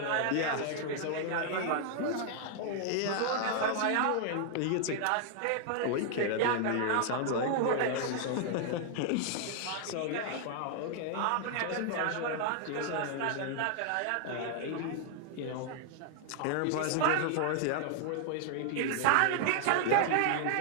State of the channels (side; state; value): both; different; correlation 0.00